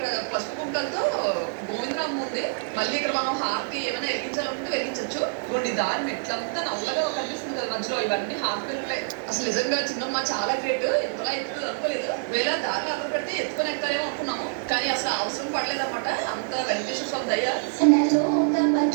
పసుపు కుంటలతో గోవిందరామ్ ఉంది. మళ్ళీ ఇక్కడ మనం హారతి ఏమైనా వెలిగించాలనుకుంటే వెలిగించవచ్చు. కొన్ని దారి మెట్లంతా నల్లగా కనిపిస్తుంది కదా మధ్యలో. ఇవన్నీ హాఫ్ మెట్లే. అసలు నిజంగా చిన్నమ్మ చాలా గ్రేట్. ఎంతలా ఎత్తుకు అనుకోలేదు. వేళ దారిలో అక్కడ పెడితే ఎత్తుకొని ఎక్కాలేమో అనుకున్నాము. కానీ అసలు అవసరం పడలేదన్నమాట. అంత వెంకటేశ్వర స్వామి దయ.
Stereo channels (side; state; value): left; silent; digital silence